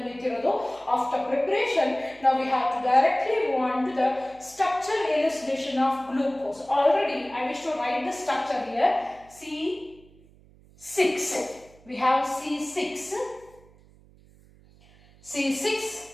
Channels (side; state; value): right; noise; hum, 26 dB below the sound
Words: ನಿಂತಿರೋದು after preparation. Now we have to directly move on to the structure elucidation of glucose. Already I wish to write the structure here. C6. We have C6